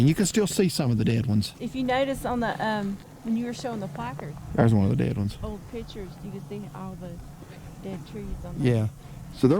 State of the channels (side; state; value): both; identical; correlation 1.00